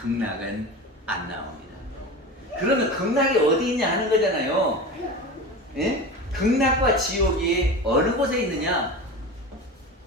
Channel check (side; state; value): both; normal; correlation 0.29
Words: 안 나옵니다. 그러면 극락이 어디 있냐 하는 거잖아요. 예? 극락과 지옥이 어느 곳에 있느냐?